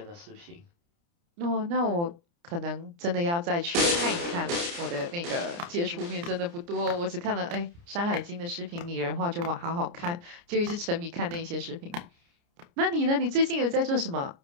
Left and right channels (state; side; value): late; left; 29 ms